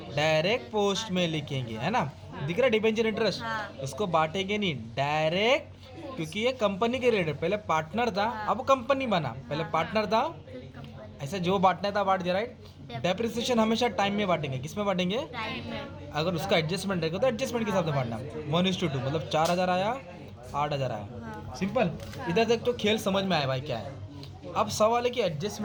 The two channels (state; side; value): identical; both; correlation 1.00